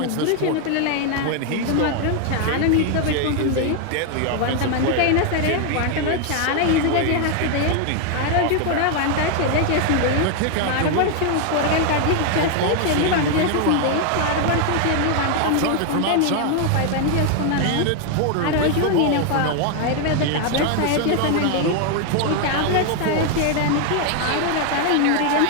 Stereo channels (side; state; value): both; different; correlation 0.01